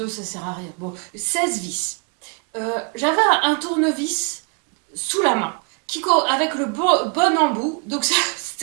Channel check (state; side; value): quieter; left; 36.8 dB